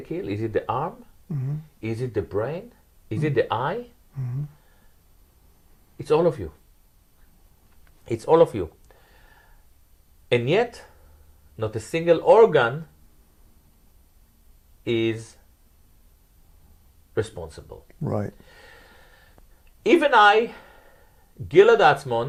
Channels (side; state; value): both; identical; correlation 1.00